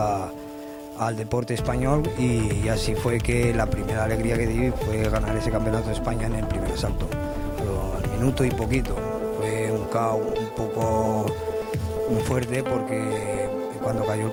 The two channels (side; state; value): both; identical; correlation 1.00